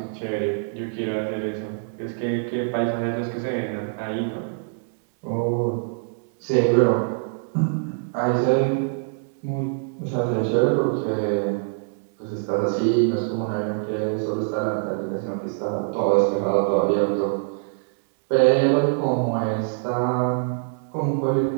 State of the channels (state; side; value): silent; left; digital silence